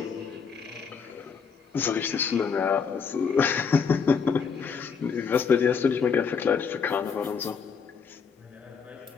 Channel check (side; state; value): right; quieter; 6.0 dB